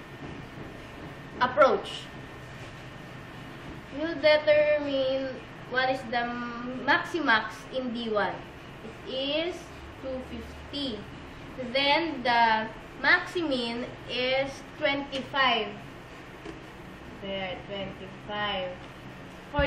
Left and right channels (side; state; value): both; identical; correlation 1.00